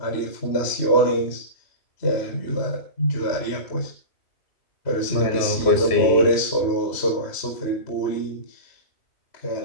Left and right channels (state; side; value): late; right; 3.1 ms